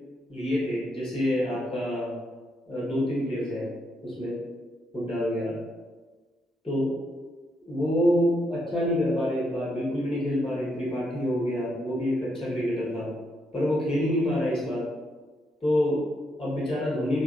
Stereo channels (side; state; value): both; normal; correlation 0.78